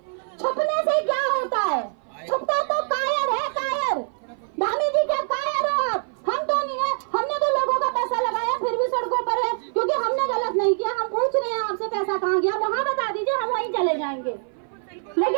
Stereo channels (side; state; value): left; silent; 56 dB below the other